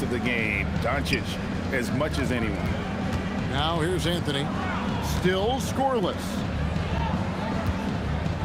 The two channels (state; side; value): identical; both; correlation 1.00